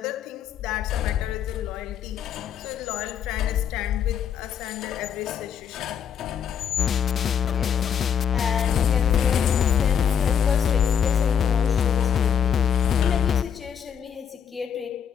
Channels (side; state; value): right; quieter; 8.1 dB